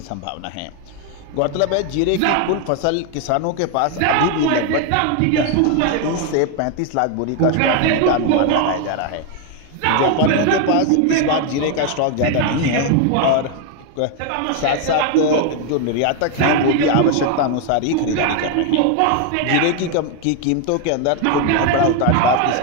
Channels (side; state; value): both; different; correlation 0.01